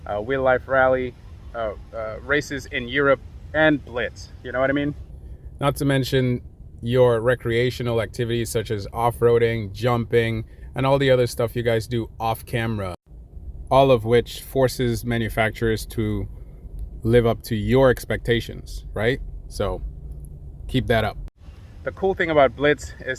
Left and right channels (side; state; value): both; identical; correlation 1.00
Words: Wheel Life Rally, races in Europe, and Blitz, you know what I mean? Not to mention your recreational activities such as off-roading, jumping, and all the other stuff you guys do off camera, all of which forces manufacturers to live up to your expectations, right? So keep that up. The cool thing about Blitz